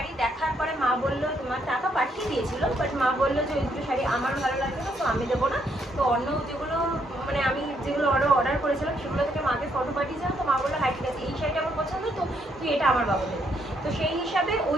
দেখার পরে মা বললো, তোমার টাকা পাঠিয়ে দিয়েছিল, বাট মা বললো যে ওই দুটো শাড়ি আমার ভালো লাগবে না, তো আমি দেবো না। তো অন্য যেগুলো মানে আমি যেগুলো অর্ডার করেছিলাম সেগুলো থেকে মাকে ফটো পাঠিয়েছিলাম, তো মা বললো হ্যাঁ ঠিক আছে, এই শাড়িটা আমার পছন্দ, তো তুই এটা আমার বাবা দেবে। তো সেই হিসাবে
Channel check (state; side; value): normal; both; correlation 0.73